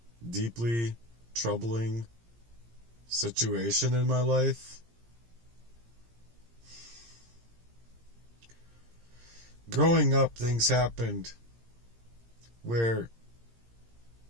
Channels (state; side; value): late; left; 17 ms